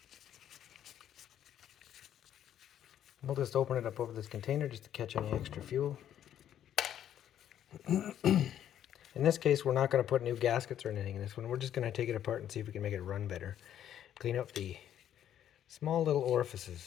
We'll just open it up over this container just to catch any extra fuel. In this case, we're not going to put new gaskets or anything in this one. We're just going to take it apart and see if we can make it run better. Clean up the small little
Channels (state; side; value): quieter; right; 10.5 dB